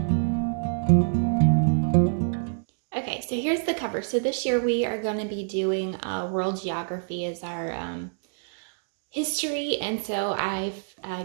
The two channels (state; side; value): silent; left; digital silence